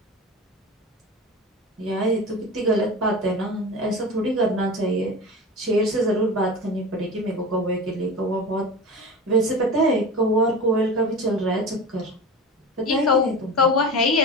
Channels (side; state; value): both; normal; correlation 0.31